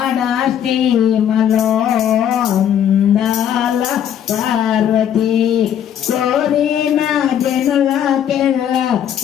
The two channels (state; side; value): quieter; right; 9.6 dB